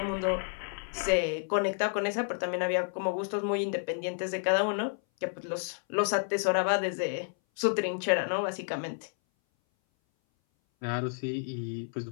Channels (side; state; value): right; silent; 57 dB below the other